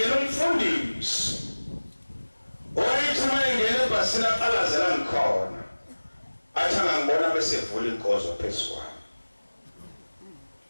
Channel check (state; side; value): inverted; both; correlation -1.00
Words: umfundisi. Oyithi uma engene ebhasini aqalazela ngikhona. Athi angangibona bese evula inkozo phezu kwami.